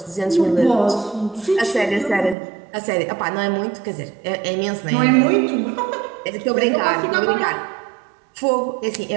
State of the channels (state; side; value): drops out; left; at 2.4 s